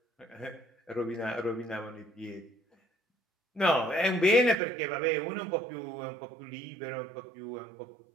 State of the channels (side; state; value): left; drops out; at 4.6 s